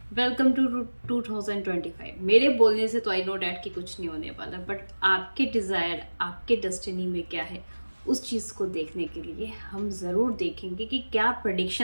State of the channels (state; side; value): inverted; both; correlation -1.00